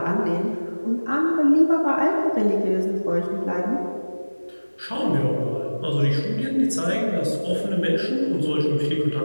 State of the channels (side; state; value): both; inverted; correlation -1.00